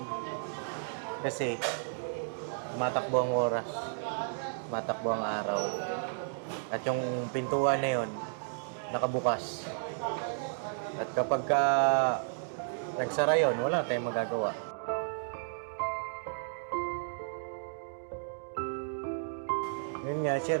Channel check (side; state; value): left; silent; digital silence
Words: Kasi, matakbo ang oras, matakbo ang araw. At yung pintuan na yun, nakabukas. At kapag nagsara yun, wala tayong magagawa. Yun nga,